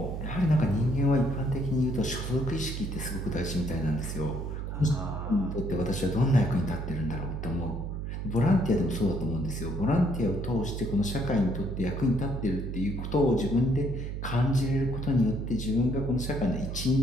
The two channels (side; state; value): right; noise; hum, 4 dB below the sound